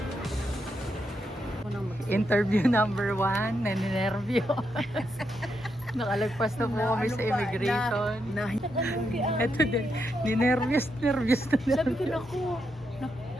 Interview number 1, naninervyo. Nakalagpas na po kami sa immigration. Ito din, ninervyos na. Sabi ko, naku,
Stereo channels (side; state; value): both; normal; correlation 0.82